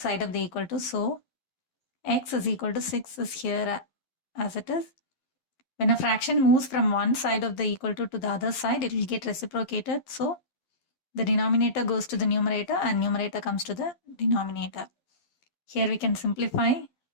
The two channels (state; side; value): late; right; 11 ms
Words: side of the equal to. So x is equal to 6 is here as it is. When a fraction moves from one side of the equal to the other side, it will get reciprocated. So the denominator goes to the numerator and numerator comes to the denominator. Here we can simplify.